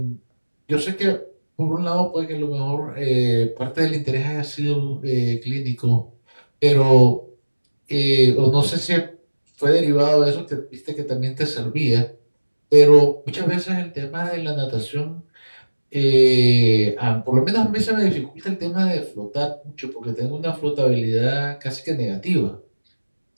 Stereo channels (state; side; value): inverted; both; correlation -1.00